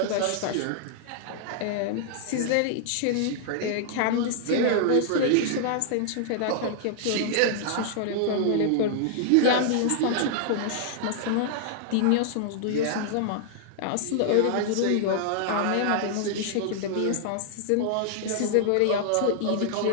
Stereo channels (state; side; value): different; both; correlation -0.01